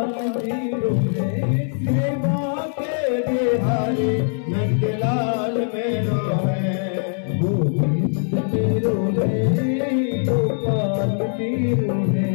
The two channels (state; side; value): silent; right; 62 dB below the other